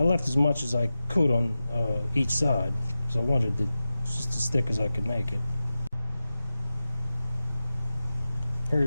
left as much as I could on each side. So I wanted it just as thick as I could make it. Here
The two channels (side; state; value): both; inverted; correlation -0.94